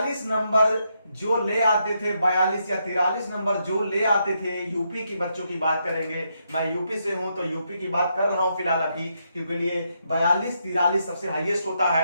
नंबर जो ले आते थे, 42 या 43 नंबर जो ले आते थे, यूपी की बच्चों की बात करेंगे, मैं यूपी से हूं तो यूपी की बात कर रहा हूं फिलहाल अभी, क्योंकि लिए 42-43 सबसे हाईएस्ट होता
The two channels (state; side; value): inverted; both; correlation -0.79